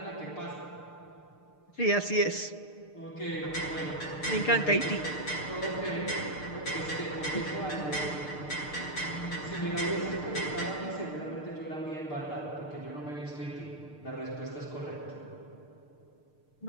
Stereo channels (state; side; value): late; right; 6.6 ms